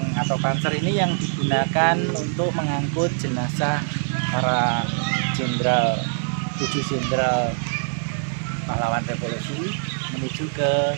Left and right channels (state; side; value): silent; left; digital silence